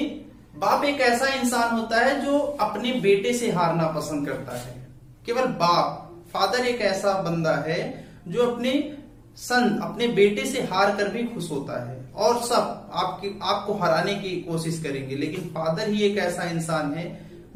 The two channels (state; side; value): identical; both; correlation 1.00